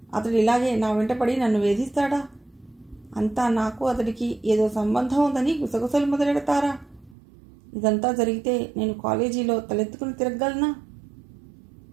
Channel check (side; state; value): left; drops out; at 7.2 s